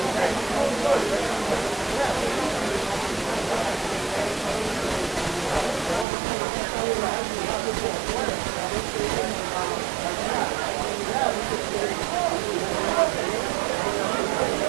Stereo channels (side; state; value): left; drops out; at 6.1 s